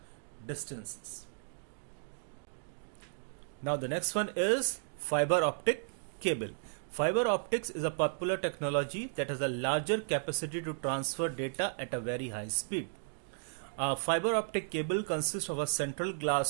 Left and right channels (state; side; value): silent; left; digital silence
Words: distances. Now the next one is fiber optic cable. Fiber optics is a popular technology that has a larger capacity to transfer data at a very high speed. A fiber optic cable consists of a central